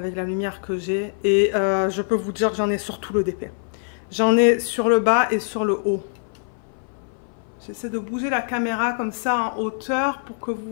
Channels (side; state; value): right; silent; 59 dB below the other